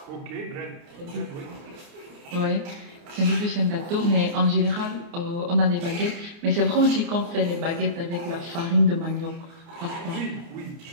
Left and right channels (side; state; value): left; late; 29 ms